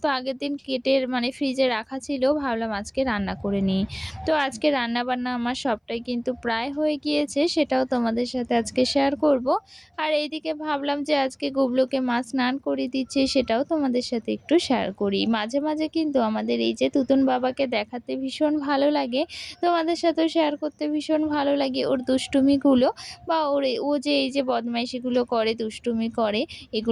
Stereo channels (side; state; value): both; identical; correlation 1.00